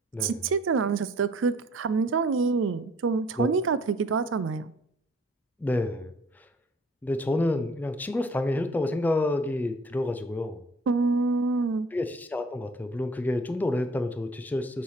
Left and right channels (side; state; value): both; normal; correlation 0.54